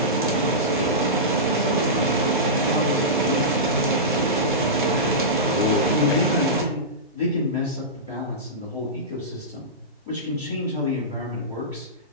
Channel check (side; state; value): both; normal; correlation -0.17